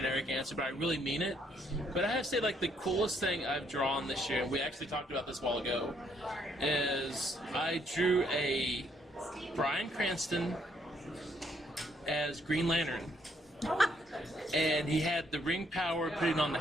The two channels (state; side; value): normal; both; correlation 0.70